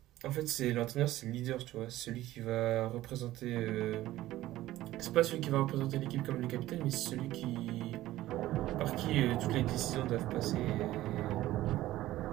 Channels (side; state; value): left; quieter; 15.5 dB